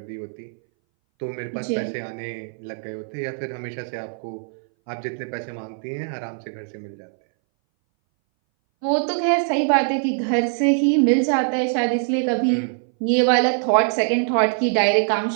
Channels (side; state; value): left; silent; 61 dB below the other